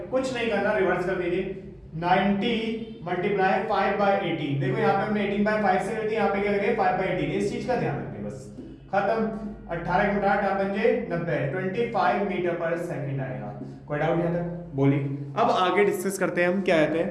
कुछ नहीं करना, रिवर्स कर दीजिए। 90 मल्टीप्लाई 5 बाय 18। देखो यहाँ पे हमने 18 बाय 5 से कर दी, यहाँ पे क्या करेंगे 5 बाय 18। इस चीज का ध्यान रखें, बस खत्म। 18 के 8 बन 90, 25 मीटर पर सेकंड आएगा। कोई डाउट यहाँ तक? बोलिए। अब आगे डिस्कस करते हैं हम क्या कहते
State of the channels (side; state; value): both; identical; correlation 1.00